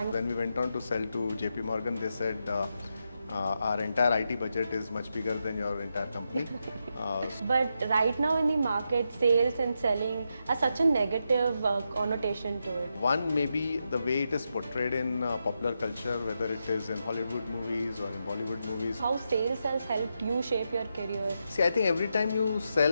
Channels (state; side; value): inverted; both; correlation -0.85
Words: When we went on to sell to JP Morgan, they said our entire IT budget is much bigger than your entire company. But right now in the market, sales and selling has such a negative connotation to it. One, maybe the way it is portrayed in popular culture, whether it is in Hollywood movies or in Bollywood movies. How sales has helped you shape your career? See, I think every time you